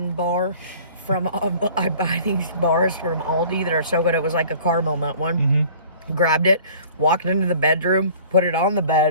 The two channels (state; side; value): inverted; both; correlation -0.49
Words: bar. I buy these bars from Aldi that are so good. It was like a caramel nut one. Mm-hmm. Grabbed it, walked into the bedroom, put it on the